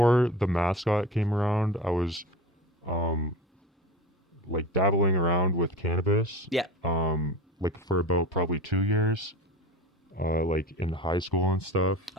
the mascot came around, I was like dabbling around with cannabis. Yeah. Like for about probably 2 years, like in high school and stuff.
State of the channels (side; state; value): both; normal; correlation 0.33